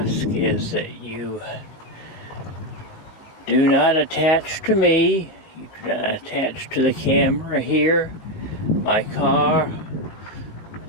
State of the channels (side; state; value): right; late; 19 ms